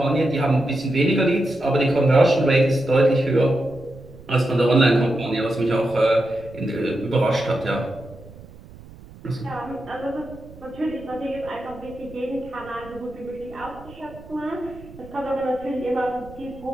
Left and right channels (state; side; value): noise; right; rumble, 20 dB below the sound